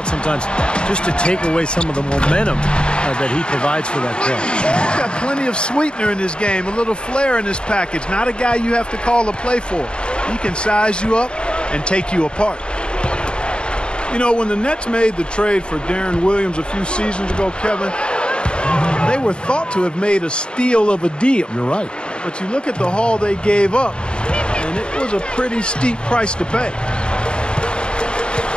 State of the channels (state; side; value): late; right; 0.052 ms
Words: sometimes just to take away some of the momentum that he provides for that play. He's got plenty of sweetener in his game, a little flair in his package. Not a guy you have to call a play for. He can size you up and take you apart. When the Nets made the trade for Darren Williams a few seasons ago, Kevin, they were thought to have made a steal of a deal. You're right. But you look at the haul they gave up, and it was a pretty steep price to pay.